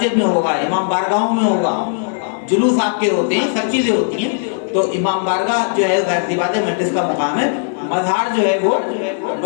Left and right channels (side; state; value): right; silent; digital silence